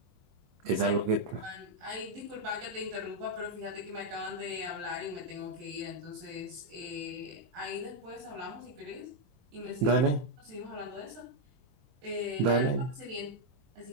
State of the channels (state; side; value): late; left; 24 ms